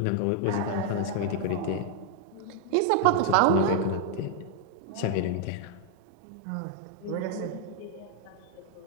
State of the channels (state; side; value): different; both; correlation 0.00